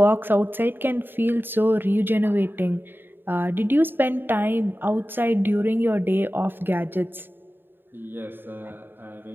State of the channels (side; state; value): left; late; 0.097 ms